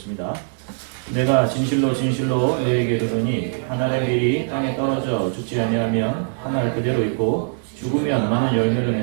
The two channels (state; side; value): silent; left; 65 dB below the other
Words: 내가 진실로 진실로 너에게 이르노니 한 알의 밀이 땅에 떨어져 죽지 아니하면 한 알 그대로 있고 죽으면 많은 열매를